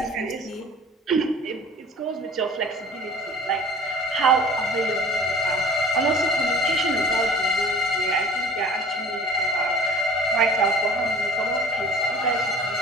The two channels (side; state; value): both; normal; correlation 0.45